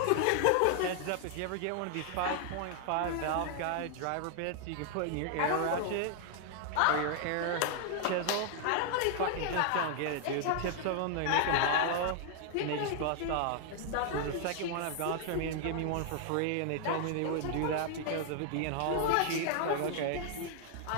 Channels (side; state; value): both; different; correlation 0.00